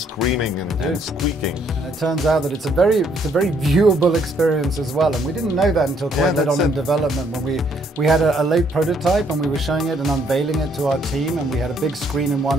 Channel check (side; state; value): both; normal; correlation 0.68